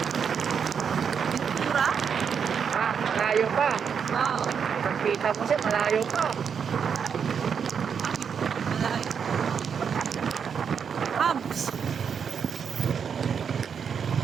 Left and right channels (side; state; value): left; quieter; 6.9 dB